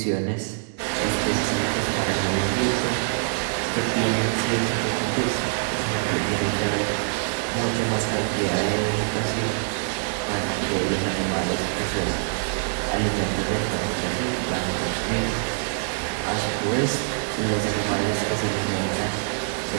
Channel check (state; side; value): silent; left; 62 dB below the other